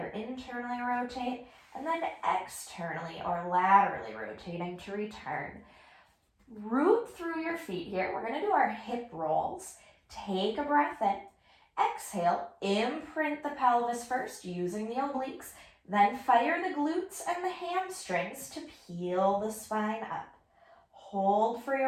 internally rotate, and then externally or laterally rotating to return. Root through your feet here. We're going to do our hip rolls. Take a breath in. Exhale, imprint the pelvis first using the obliques, then fire the glutes and the hamstrings to peel the spine up. Hold for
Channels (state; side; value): identical; both; correlation 1.00